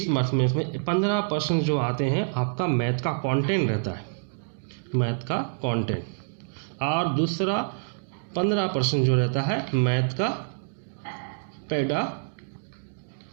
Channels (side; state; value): left; silent; digital silence